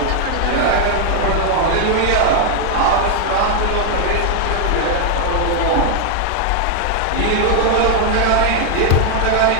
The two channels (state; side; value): different; both; correlation 0.00